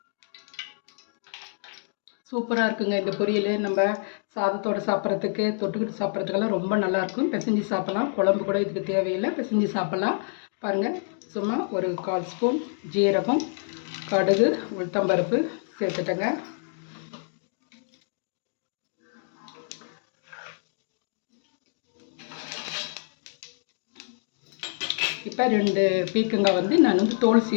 சூப்பராக இருக்குங்க இந்த பொரியல். நம்ம சாதத்தோடு சாப்பிட்றதுக்கு, தொட்டுக்கிட்டு சாப்பிட்றதுக்கெல்லாம் ரொம்ப நல்லாயிருக்கும். பிசைஞ்சு சாப்பிட்லாம். குழம்பு கூட இதுக்கு தேவையில்லை, பிசைஞ்சு சாப்பிட்லாம். பாருங்கள், சும்மா ஒரு 1/4 ஸ்பூன் ஜீரகம், கடுகு, உளுத்தம்பருப்பு சேர்த்துட்டேங்க. இப்போ 2 பீக்கங்காய் நான் தோல்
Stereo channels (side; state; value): right; silent; digital silence